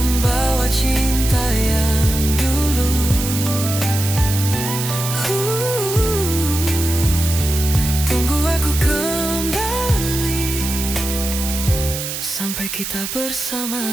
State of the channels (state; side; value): noise; right; hiss, 5 dB below the sound